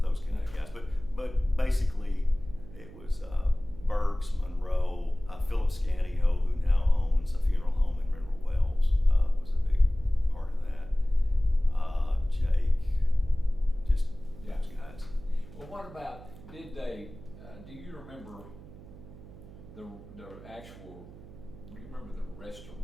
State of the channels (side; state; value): right; noise; hum, 17 dB below the sound